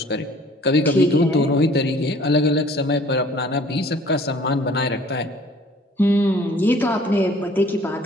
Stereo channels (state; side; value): normal; both; correlation 0.53